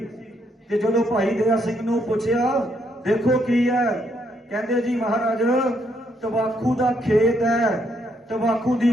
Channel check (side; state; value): both; normal; correlation 0.74